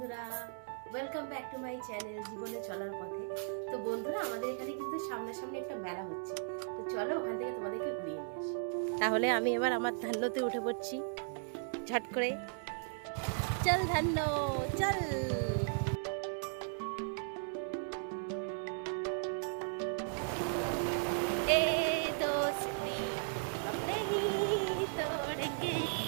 welcome back to my channel জীবনে চলার পথে। তো বন্ধুরা, আমাদের এখানে কিন্তু সামনাসামনি একটা মেলা হচ্ছে, তো চলো ওখান থেকে তোমাদেরকে ঘুরিয়ে নিয়ে আসি। তাহলে আমি এবার আমার ধান্যতে উঠে পড়ছি ঝট করে। চল ধান্য চল। এ দোস্তি हम नहीं तोड़ेंगे।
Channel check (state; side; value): silent; left; 53 dB below the other